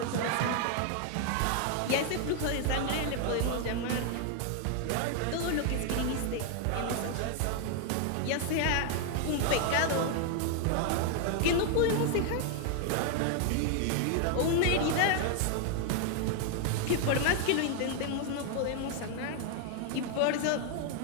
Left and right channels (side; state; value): both; different; correlation 0.00